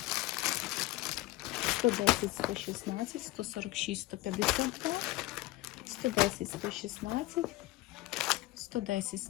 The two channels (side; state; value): right; quieter; 18.9 dB